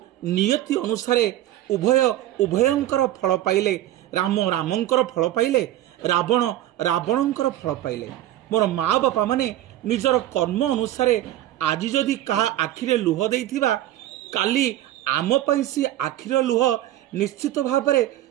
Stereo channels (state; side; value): quieter; left; 13.7 dB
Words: नियति अनुसारे उभय उभयंकर फल पाइले। राम रामंकर फल पाइले, रावण रावणंकर फल पाइले। मोर माँ बापा माने निजर कर्म अनुसारे आज जदि कहा आखिरे लुह देइथिबा, काली आम पई सी आखिर लुह निश्चित भाव में